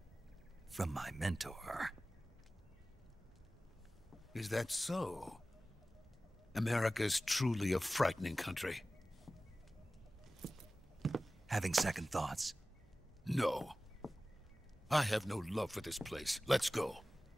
From my mentor. Is that so? America's truly a frightening country. Having second thoughts? No. I have no love for this place. Let's go.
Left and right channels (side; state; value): both; normal; correlation 0.97